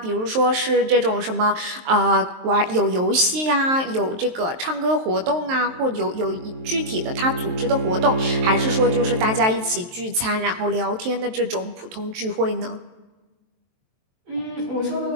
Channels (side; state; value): left; late; 23 ms